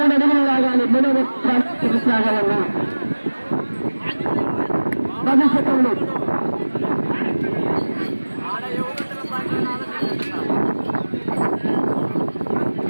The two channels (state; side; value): inverted; both; correlation -1.00